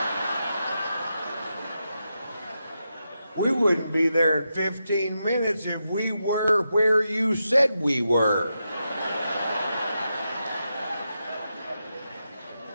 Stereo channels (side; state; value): both; inverted; correlation -0.87